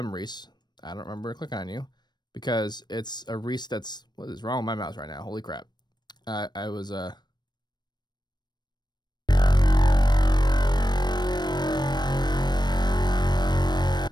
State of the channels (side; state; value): right; late; 0.21 ms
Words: Reese. I don't remember clicking on you because it's a Reese that's what is wrong with my mouse right now? Holy crap! I was